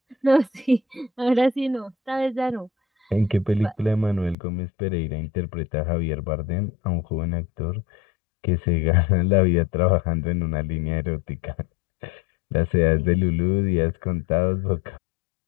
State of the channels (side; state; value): right; drops out; at 4.4 s